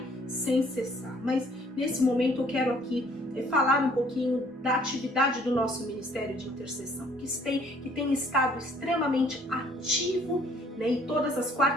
sem cessar. Mas nesse momento eu quero aqui falar um pouquinho da atividade do nosso Ministério de Intercessão, que tem estado extremamente ativo, e todas as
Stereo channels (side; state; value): both; normal; correlation 0.60